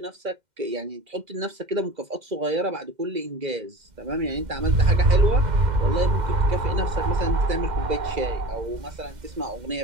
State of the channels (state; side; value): late; left; 2.1 ms